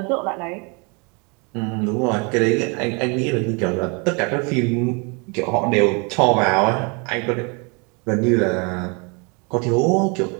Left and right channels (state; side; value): quieter; left; 31.8 dB